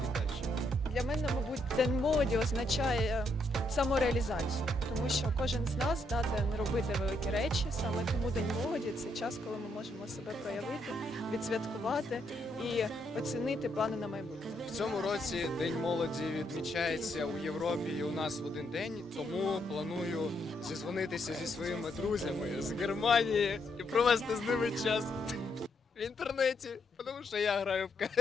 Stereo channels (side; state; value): both; normal; correlation 0.76